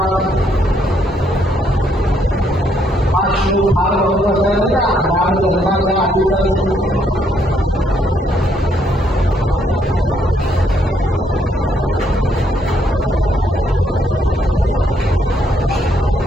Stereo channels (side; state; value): both; normal; correlation 0.71